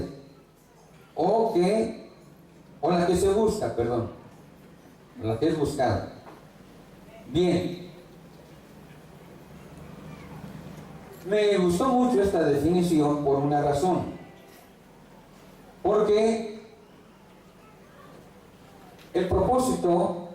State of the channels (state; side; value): identical; both; correlation 1.00